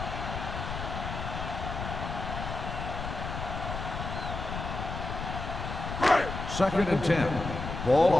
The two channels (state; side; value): noise; left; rumble, 6 dB below the sound